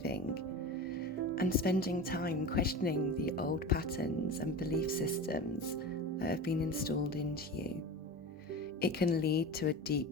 and spending time questioning the old patterns and belief systems that have been installed into you. It can lead to a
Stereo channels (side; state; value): both; normal; correlation 0.29